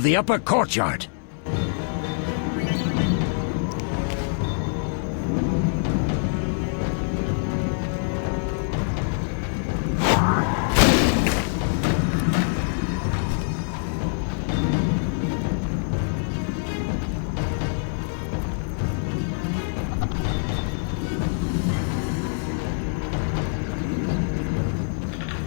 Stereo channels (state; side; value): silent; right; 62 dB below the other